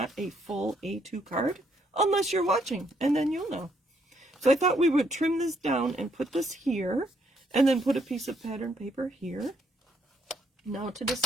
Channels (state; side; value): normal; both; correlation 0.71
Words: a full A2 card, unless you're watching, and then you'll know. So I thought we would trim this down and put this here, and then put a piece of pattern paper here. Now to